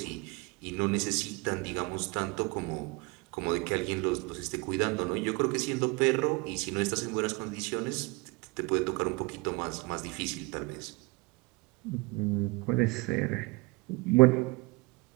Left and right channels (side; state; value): left; quieter; 26.0 dB